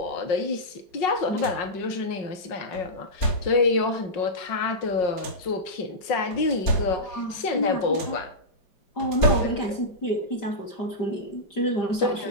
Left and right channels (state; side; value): late; right; 5.5 ms